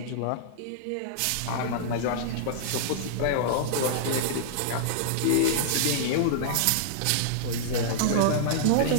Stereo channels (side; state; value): both; different; correlation -0.02